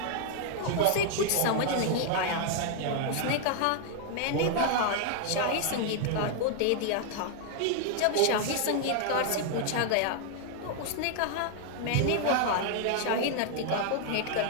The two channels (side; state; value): both; different; correlation 0.00